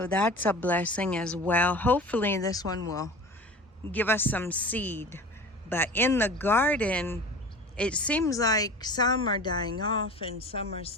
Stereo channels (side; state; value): both; normal; correlation 0.38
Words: that's a blessing as well. Hopefully this one will give us some seed. But in the garden, it seems like some are dying off and some are